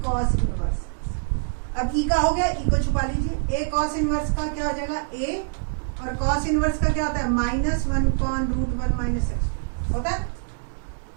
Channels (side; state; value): left; silent; digital silence